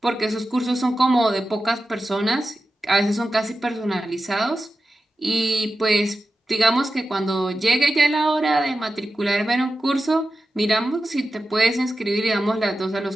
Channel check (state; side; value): normal; both; correlation 0.92